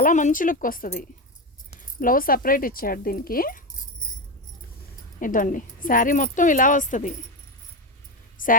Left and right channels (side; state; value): both; normal; correlation 0.15